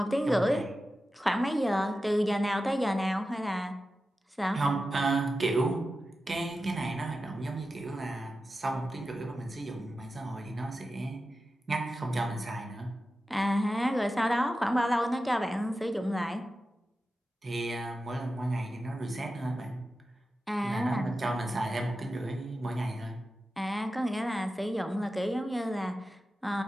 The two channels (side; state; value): both; normal; correlation 0.92